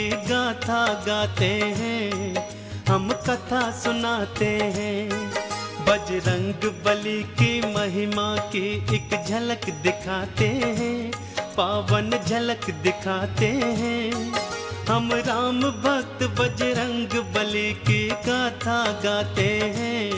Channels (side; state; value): both; identical; correlation 1.00